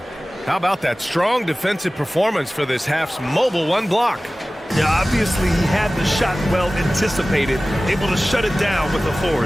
How about that strong defensive performance for this half's mobile 1 block? Yeah, obviously he had the shot well anticipated, able to shut it down with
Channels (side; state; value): both; normal; correlation 0.97